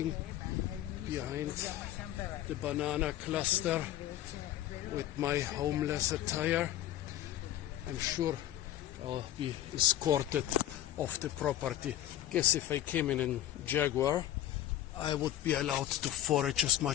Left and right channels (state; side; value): quieter; right; 12.9 dB